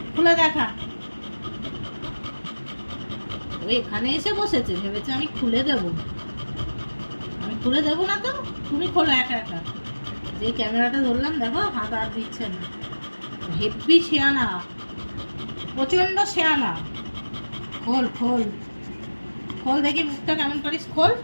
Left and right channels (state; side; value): inverted; both; correlation -1.00